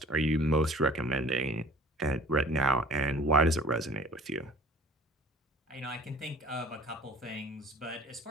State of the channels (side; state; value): both; normal; correlation 0.48